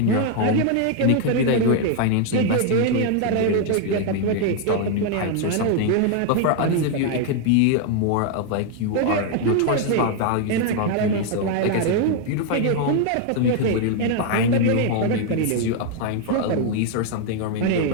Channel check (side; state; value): both; different; correlation 0.00